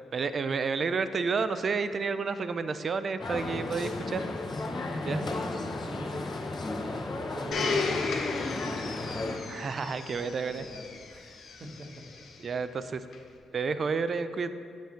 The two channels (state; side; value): normal; both; correlation 0.80